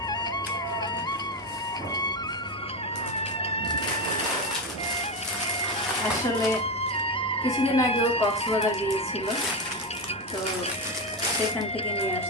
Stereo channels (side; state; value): left; noise; hum, 30 dB below the sound